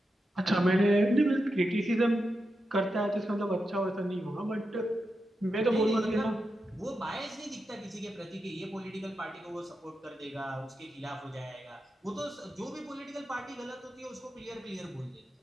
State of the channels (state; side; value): normal; both; correlation 0.88